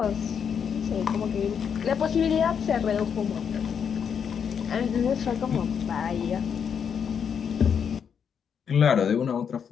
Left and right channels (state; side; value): quieter; right; 7.3 dB